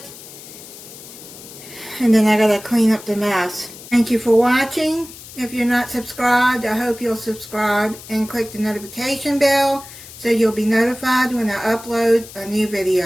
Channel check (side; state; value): left; noise; hiss, 16 dB below the sound